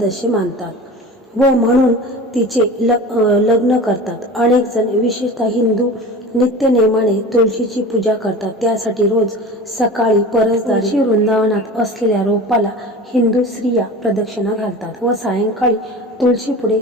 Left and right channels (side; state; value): both; normal; correlation 0.35